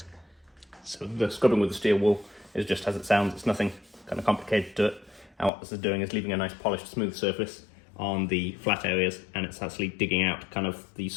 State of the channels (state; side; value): drops out; right; at 5.5 s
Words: So the scrubbing with the steel wool is just as it sounds, it's nothing kind of complicated to it. And what this is doing is leaving a nice polished smooth surface on the flat areas, and it's actually digging out kind of the